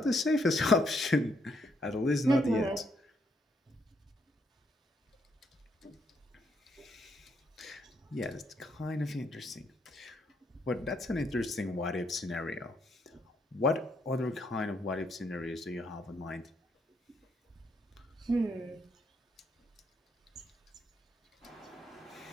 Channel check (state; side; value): normal; both; correlation 0.74